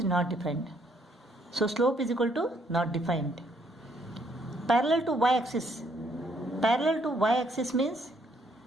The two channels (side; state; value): both; normal; correlation 0.69